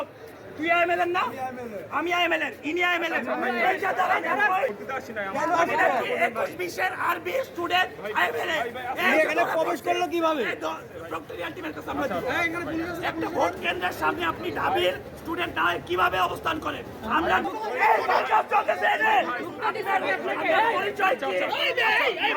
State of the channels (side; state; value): both; identical; correlation 1.00